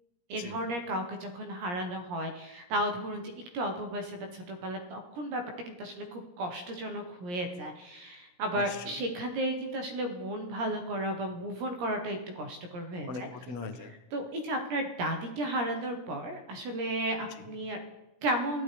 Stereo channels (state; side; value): late; left; 17 ms